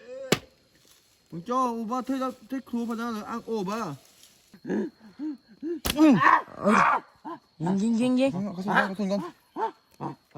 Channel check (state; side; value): identical; both; correlation 1.00